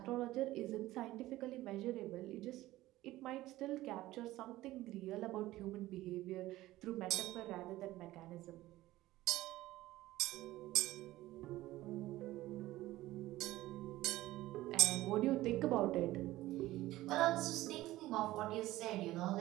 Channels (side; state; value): left; quieter; 16.6 dB